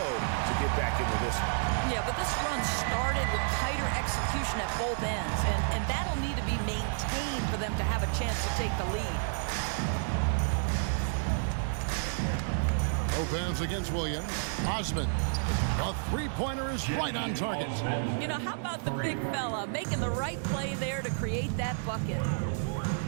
to get back into this one. Yeah, but this run started with tighter execution at both ends, and that'll need to be maintained for them to have a chance to take the lead. Lopez against Williams. Osman. A three-pointer is right on target. You know, how about the big fella making the right play there to create that bucket?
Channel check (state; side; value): silent; left; digital silence